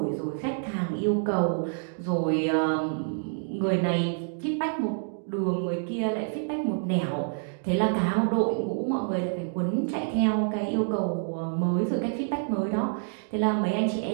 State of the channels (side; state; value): left; silent; digital silence